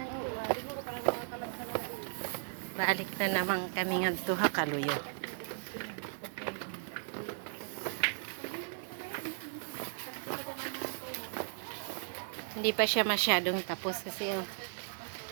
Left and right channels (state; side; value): silent; left; digital silence